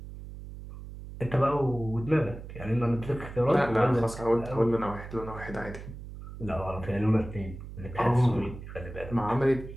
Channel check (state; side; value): noise; right; hum, 12 dB below the sound